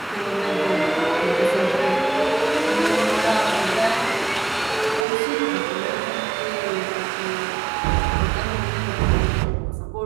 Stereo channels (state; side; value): drops out; left; at 5.1 s